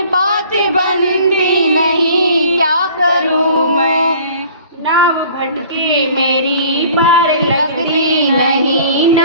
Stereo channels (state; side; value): inverted; both; correlation -0.49